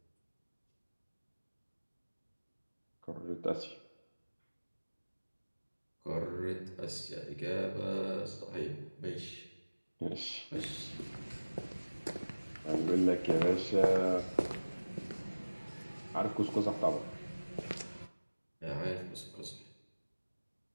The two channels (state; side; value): inverted; both; correlation -1.00